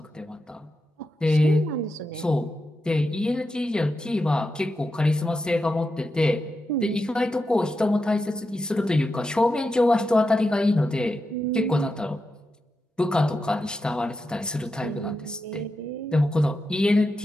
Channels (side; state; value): both; normal; correlation 0.88